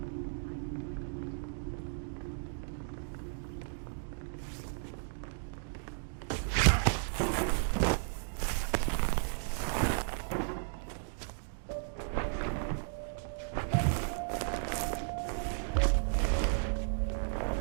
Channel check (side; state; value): left; silent; digital silence